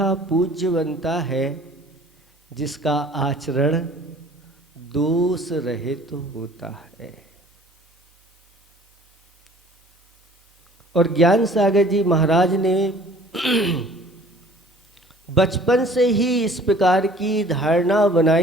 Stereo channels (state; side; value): normal; both; correlation 0.51